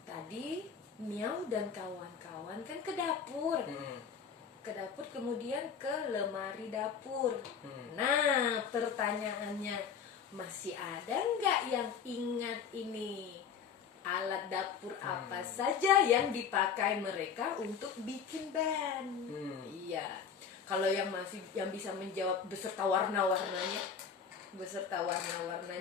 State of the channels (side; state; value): right; quieter; 6.8 dB